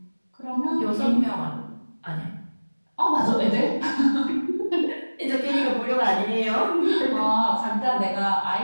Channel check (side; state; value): both; inverted; correlation -1.00